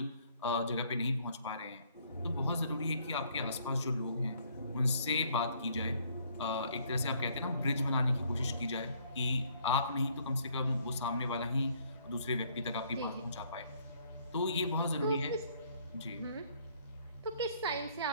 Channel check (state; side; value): inverted; both; correlation -0.64